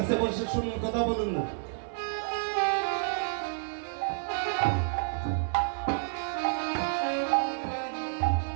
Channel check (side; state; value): left; silent; 58 dB below the other